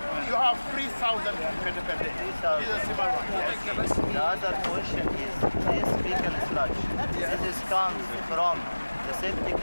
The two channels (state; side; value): inverted; both; correlation -1.00